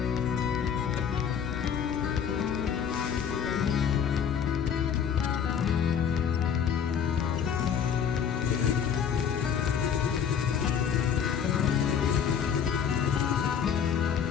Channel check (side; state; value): right; quieter; 7.7 dB